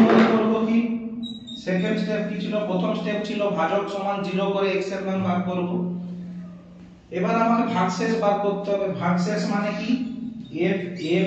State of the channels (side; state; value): both; identical; correlation 1.00